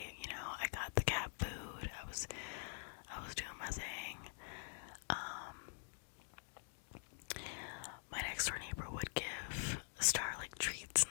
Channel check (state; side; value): silent; right; digital silence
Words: You know, I got the cat food. I was doing my thing. My next door neighbor would give Star like treats